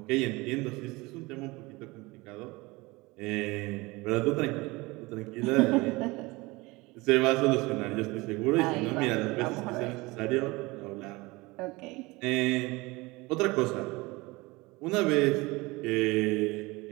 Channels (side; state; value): left; quieter; 22.9 dB